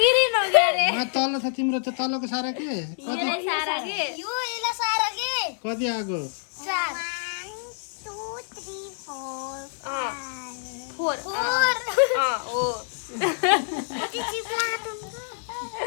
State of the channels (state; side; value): silent; right; digital silence